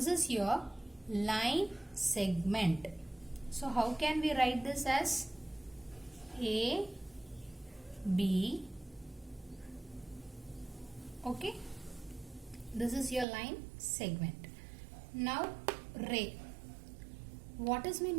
is your line segment. So how can we write this as? A, B, okay? This is your line segment. Now ray. What is meant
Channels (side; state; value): left; drops out; at 13.2 s